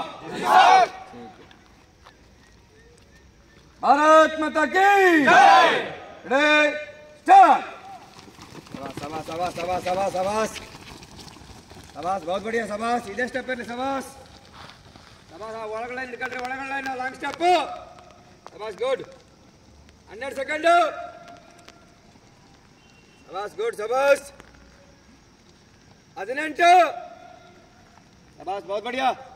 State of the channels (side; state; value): both; identical; correlation 1.00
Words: भारत माता की जय। Ready start. शाबाश शाबाश शाबाश शाबाश शाबाश शाबाश, बहुत बढ़िया शाबाश. इधर स्टेप पे शाबाश शाबाश. ಒಳಗಡೆ ನಿಲ್ಕಳ್ರಿ, ಒಳಗಡೆ ಲಾಂಗ್ ಸ್ಟೆಪ್. ಶಾಬಾಸ್, ಗುಡ್. 12 ಸೆಕೆಂಡ್. ಶಾಬಾಸ್, ಗುಡ್. ಶಾಬಾಸ್. 18. शाबाश, बहुत बढ़िया.